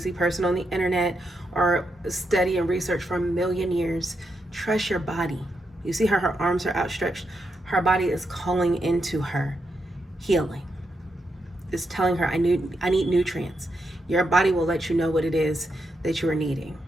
person on the internet or study and research for a million years. Trust your body. You see how her arms are outstretched? Her body is calling into her healing. It's telling her, I need nutrients. Your body will let you know what it is that you are needing.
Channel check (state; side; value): normal; both; correlation 0.83